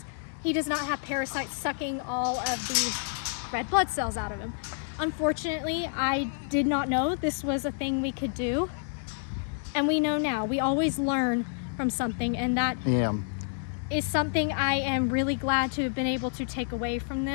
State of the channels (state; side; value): silent; right; digital silence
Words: he does not have parasites sucking all of the red blood cells out of him. Unfortunately, I did not know this was a thing we could do. And we know now. We always learn from something, and that is something I am really glad to have been able to take away from